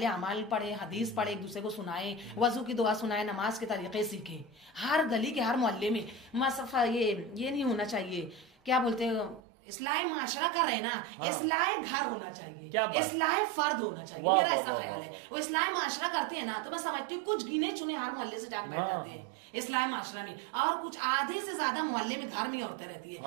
अमाल पढ़े, हदीस पढ़े, एक दूसरे को सुनाए, वजू की दुआ सुनाए, नमाज के तरीके सीखे। हर गली के हर मोहल्ले में मसफा ये नहीं होना चाहिए, क्या बोलते हैं, इस्लाह माशरा कर रहे ना, इस्लाह घर होना चाहिए, इस्लाह फर्द होना चाहिए। मेरा ऐसा ख्याल है। वो इस्लाह माशरा करते हैं ना, तो मैं समझती हूँ कुछ गिने चुने हर मोहल्ले से जाकर बैठ जाते हैं इस्लाह माशरा में, और कुछ आधे से ज्यादा मोहल्ले में घर में औरतें रहती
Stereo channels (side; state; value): left; drops out; at 9.4 s